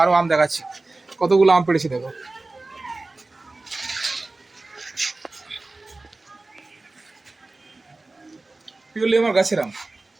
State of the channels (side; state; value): left; quieter; 3.2 dB